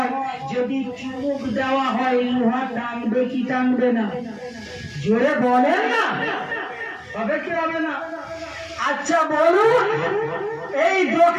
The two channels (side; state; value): both; identical; correlation 1.00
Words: যদি চুমুক দেওয়া হয়, লোহা টানবে কি টানবে না? জোরে বলেন না, হবে কি হবে না? আচ্ছা বলুন, এই